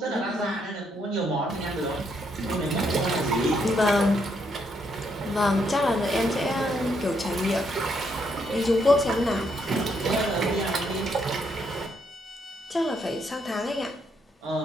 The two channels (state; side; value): normal; both; correlation 0.75